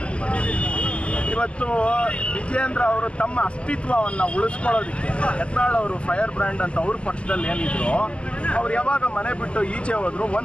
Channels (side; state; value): right; late; 0.055 ms